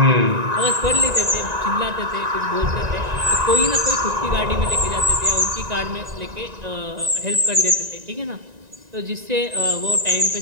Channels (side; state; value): left; late; 1.9 ms